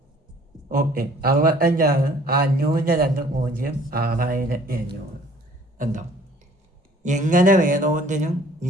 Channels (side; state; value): both; normal; correlation 0.55